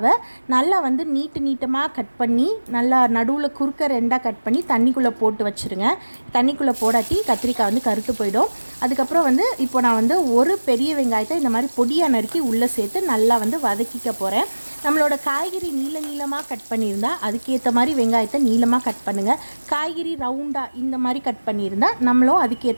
நல்லா வந்து நீட்டமாக கட் பண்ணி நல்லா நடுவில் குறுக்க 2ஆக கட் பண்ணி தண்ணிக்குள்ளே போட்டு வச்சுருங்க. தண்ணிக்குள்ளே போடாட்டி கத்திரிக்காய் வந்து கருத்து போயிடும். அதுக்கப்புறம் வந்து இப்போ நான் வந்து ஒரு பெரிய வெங்காயத்தை இந்த மாதிரி பொடியாக நறுக்கி உள்ளே சேர்த்து நல்லா வந்து வதக்கிக்க போகிறேன். நம்மளோட காய்கறி நீளமாக கட் பண்ணியிருந்தால் அதுக்கேற்ற மாதிரி வெங்காயத்தை நீளமாக கட் பண்ணுங்கள். காய்கறி ரவுண்டாக இந்த மாதிரி கட் பண்ணியிருந்தால் நம்மளும்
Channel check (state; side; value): inverted; both; correlation -1.00